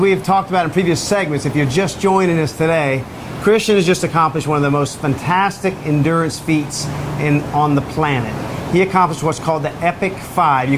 have talked about in previous segments, if you're just joining us today, Christian has just accomplished one of the most fantastic endurance feats on the planet. He accomplished what's called the Epic 5. You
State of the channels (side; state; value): both; identical; correlation 1.00